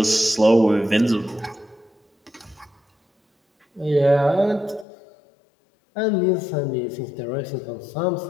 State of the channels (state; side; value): drops out; right; at 4.9 s